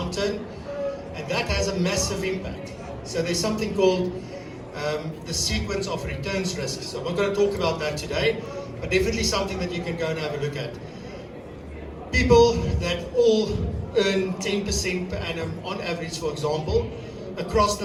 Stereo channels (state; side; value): identical; both; correlation 1.00